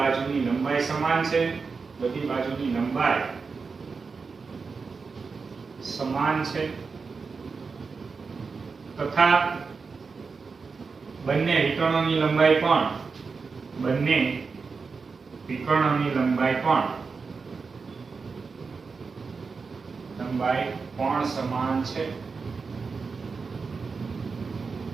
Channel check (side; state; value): left; quieter; 4.8 dB